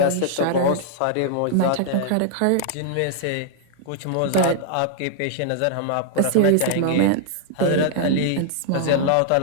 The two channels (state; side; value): different; both; correlation -0.01